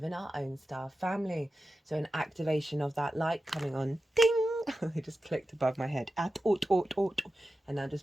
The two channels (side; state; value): both; normal; correlation 0.92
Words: our own star family. So an activation of that light coming on, ding! It just clicked above my head. And I